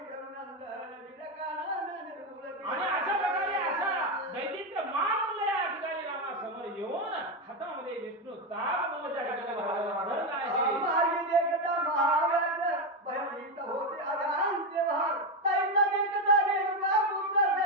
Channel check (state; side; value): normal; both; correlation 0.09